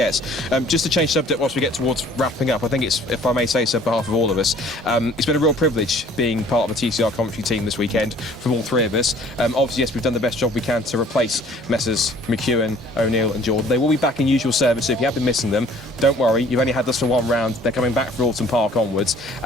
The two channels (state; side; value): normal; both; correlation 0.54